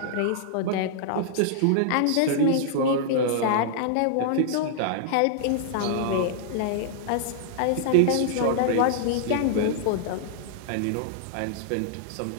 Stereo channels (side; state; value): both; different; correlation -0.01